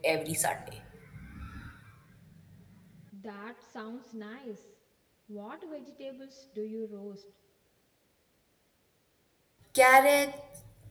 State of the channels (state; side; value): identical; both; correlation 1.00